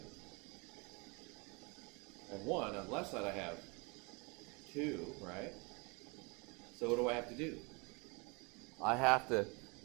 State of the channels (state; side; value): quieter; left; 30.1 dB